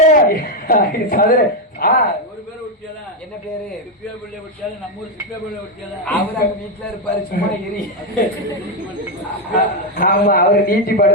ஒரு பேர் விட்டியால என்ன பேரு சிப்பியா பிள்ளை விட்டியால நம்ம ஊர் சிப்பியா பிள்ளை விட்டியால அவர் அங்க வீட்டுல இருப்பாரு சும்மா எரி ஆமா அவரு நீட்டி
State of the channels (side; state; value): both; normal; correlation 0.05